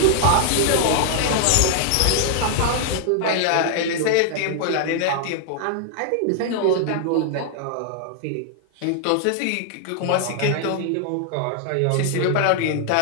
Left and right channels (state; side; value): different; both; correlation -0.01